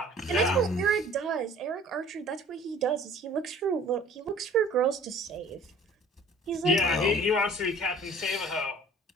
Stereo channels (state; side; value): normal; both; correlation 0.50